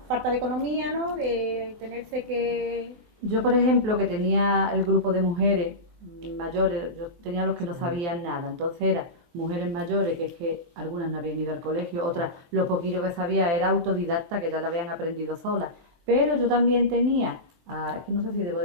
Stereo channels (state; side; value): late; left; 23 ms